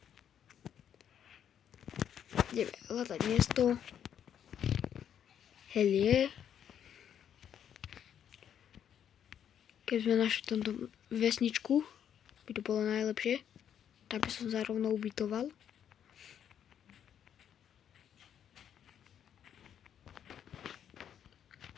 Ideme hľadať miesto. Helie. Keď sme našli tomto vesničku, by to bolo najlepšie. Tak by som sa rovno ubytoval.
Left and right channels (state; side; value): quieter; right; 9.2 dB